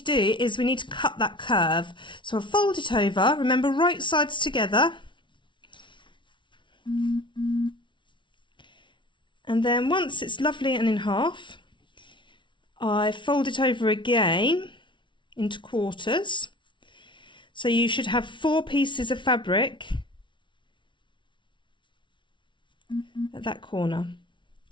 do is we need to cut that curve. So I'll fold it over, remember right sides together. And then once it's lovely and in half, I fold it over again into quarters. So you should have 4 pieces of fabric at that corner.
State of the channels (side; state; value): right; late; 0.24 ms